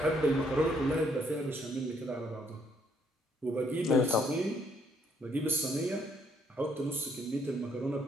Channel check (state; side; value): normal; both; correlation 0.69